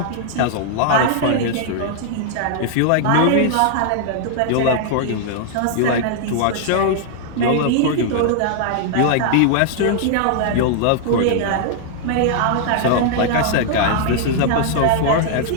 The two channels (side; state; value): both; different; correlation -0.01